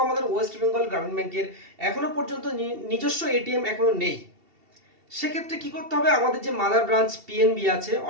আমাদের ওয়েস্ট বেঙ্গল গ্রামীণ ব্যাংকের এখনো পর্যন্ত নিজস্ব এটিএম এখনো নেই, সেক্ষেত্রে কি করতে হবে, আমাদের যে মাদার ব্রাঞ্চ পিএনবি আছে,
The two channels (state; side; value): late; left; 2.7 ms